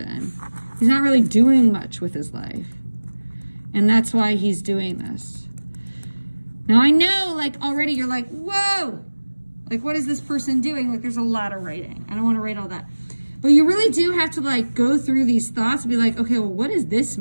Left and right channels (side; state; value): both; inverted; correlation -1.00